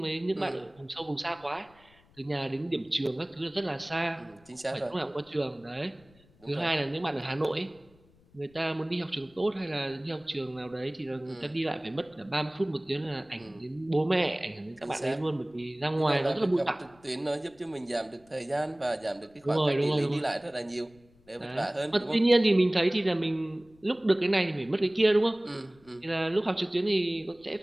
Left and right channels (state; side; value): noise; left; rumble, 29 dB below the sound